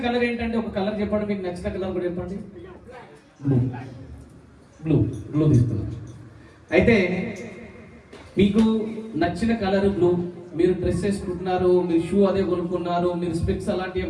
కలర్ ఏంటంటే ఒక కలర్ చెప్పండి, మీకు నచ్చిన కలర్ కూడా చెప్పండి. బ్లూ బ్లూ బ్లూ తీసుకున్నాను. అయితే మీకు నచ్చిన కలర్ బ్లూ, మీరు డ్రెస్ వేసుకుంటున్నారు, మీరు షూ అదే కొనుక్కున్నారు, మీరు స్పెక్స్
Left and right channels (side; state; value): both; identical; correlation 1.00